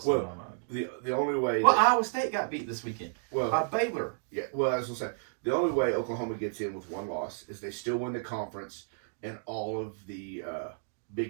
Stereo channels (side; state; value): left; silent; digital silence